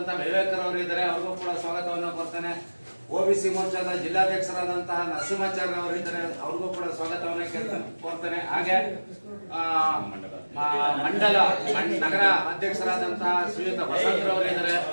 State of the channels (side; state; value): both; inverted; correlation -1.00